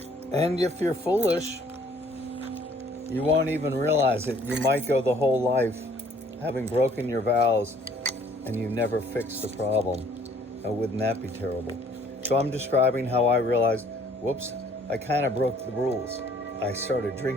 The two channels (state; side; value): normal; both; correlation 0.59